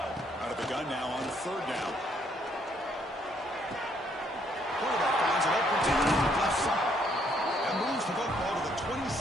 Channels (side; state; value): both; normal; correlation 0.69